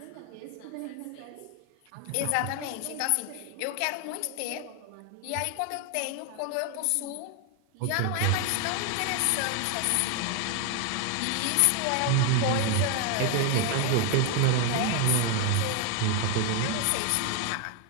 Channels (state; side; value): different; both; correlation 0.01